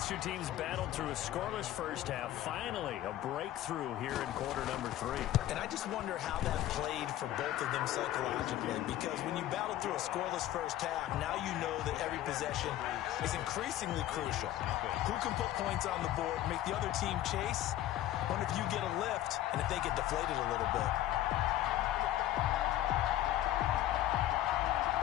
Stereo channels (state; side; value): quieter; right; 13.5 dB